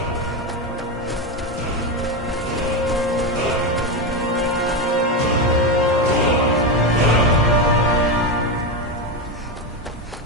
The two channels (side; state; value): both; normal; correlation 0.13